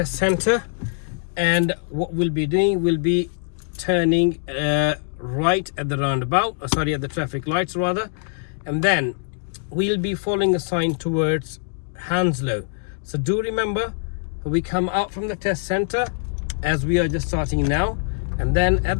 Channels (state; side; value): silent; right; digital silence